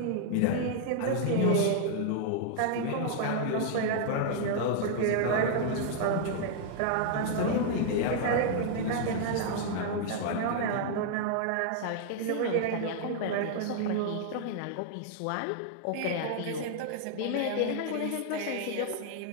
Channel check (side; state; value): both; different; correlation 0.00